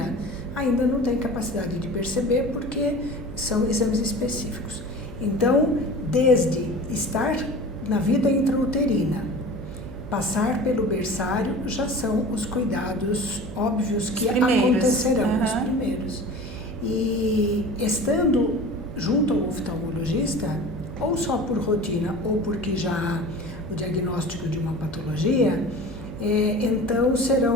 ainda não tem capacidade de perceber porque são exames específicos. Então, desde estar na vida intrauterina, passar pelo berçário, já são os cuidados óbvios que acontecerão, os primeiros. E estando junto ao oftalmologista, ou só por rotina, ou porque já há o diagnóstico de uma patologia, então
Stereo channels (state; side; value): noise; right; hum, 12 dB below the sound